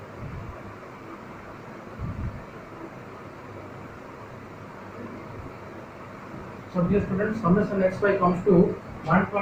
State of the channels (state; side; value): identical; both; correlation 1.00